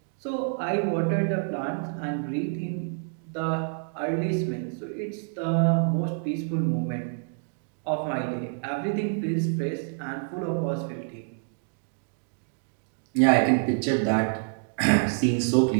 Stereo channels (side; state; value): left; silent; 60 dB below the other